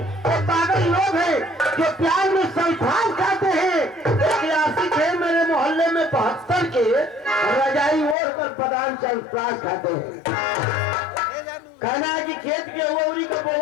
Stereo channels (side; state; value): right; drops out; at 8.2 s